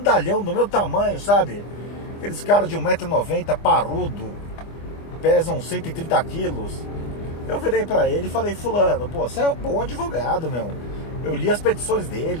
do meu tamanho, sabe? Aqueles caras de 1,90 m, parrudo, pesam 130 quilos. Eu virei pra ele e falei, fulano, pô, você é um bom advogado, meu. Eu li as petições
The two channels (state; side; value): late; right; 25 ms